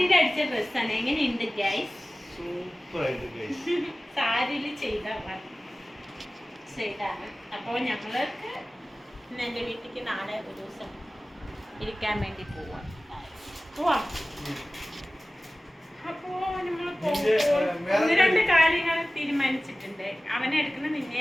അടിച്ച ഡ്രസ്സാണ്. എങ്ങനെയുണ്ട് ഗൈസ്? സൂപ്പർ ആയിട്ട് ഗൈസ്. സാരിയിൽ ചെയ്താണ്. അപ്പോൾ ഞങ്ങൾക്ക് ഇന്ന് എൻ്റെ വീട്ടിലേക്ക് നാളെ ഒരു ദിവസം ഇരിക്കാൻ വേണ്ടി പോവാം. അപ്പോൾ നമ്മൾ ഒന്ന് രണ്ട് കാര്യങ്ങൾ തീരുമാനിച്ചിട്ടുണ്ട്. അവനെ എടുക്കണം, നിന്നെ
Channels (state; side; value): normal; both; correlation 0.97